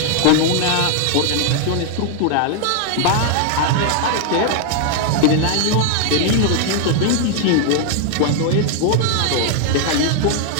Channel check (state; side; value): different; both; correlation 0.00